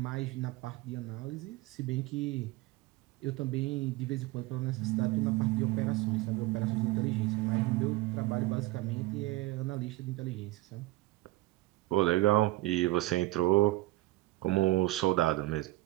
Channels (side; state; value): left; quieter; 18.8 dB